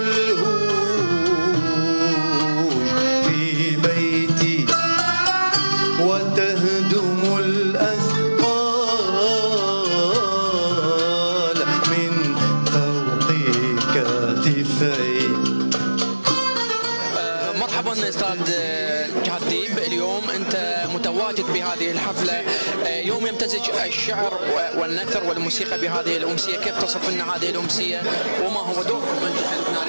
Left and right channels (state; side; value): inverted; both; correlation -1.00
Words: في بيتي وتهدم الأثقال من فوق كتفي. مرحبا استاذ جهاد ديب، اليوم انت متواجد بهذه الحفله، يوم يمتزج الشعر والنثر والموسيقى بهذه الامسيه، كيف تصف لنا هذه الامسيه وما هو دوركم